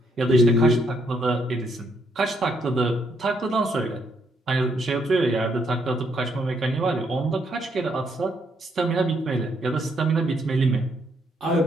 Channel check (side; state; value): both; normal; correlation 0.73